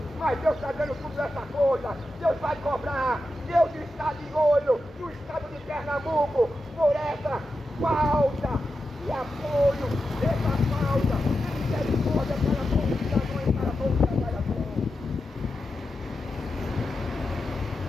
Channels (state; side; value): normal; both; correlation 0.90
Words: mas Deus está dando tudo essa coisa. Deus vai cobrar, Deus está de olho no estado de Pernambuco por essa falta de apoio, essa falta de misericórdia para com o cidadão e para com o trabalhador.